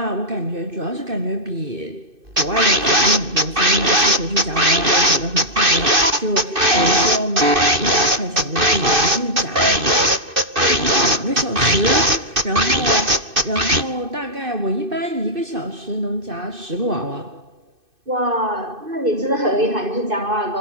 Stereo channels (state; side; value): late; left; 2.6 ms